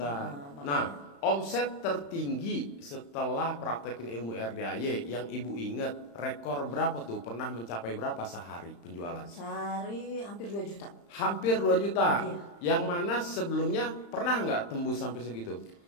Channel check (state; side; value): late; right; 35 ms